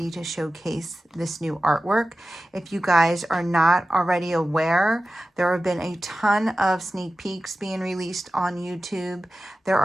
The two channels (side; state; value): both; normal; correlation 0.94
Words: to showcase this new artwork. If you guys are not already aware, there have been a ton of sneak peeks being released on YouTube. There